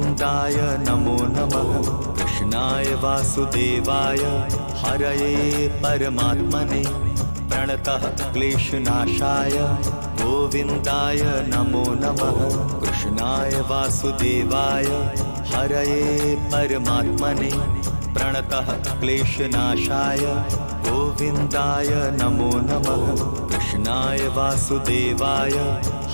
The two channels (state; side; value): inverted; both; correlation -1.00